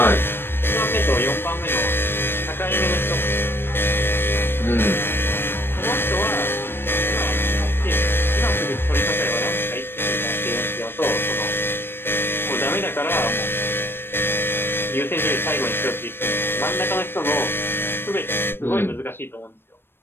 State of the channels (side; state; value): right; late; 0.10 ms